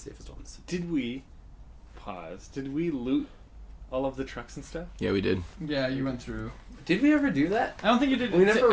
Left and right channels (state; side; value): identical; both; correlation 1.00